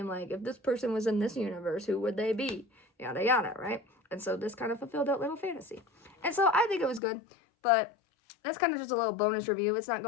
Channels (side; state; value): right; drops out; at 7.0 s